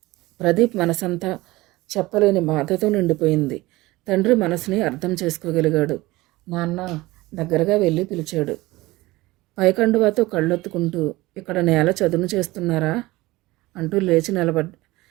ప్రదీప్ మనసంతా చెప్పలేని బాధతో నిండిపోయింది. తండ్రి మనసుని అర్థం చేసుకోగలిగాడు. నాన్న దగ్గరగా వెళ్ళి పిలిచాడు. పైకండువాతో కళ్ళొత్తుకుంటూ, ఇక్కడ నేల చదును చేస్తున్నారా అంటూ లేచి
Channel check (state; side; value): quieter; left; 19.8 dB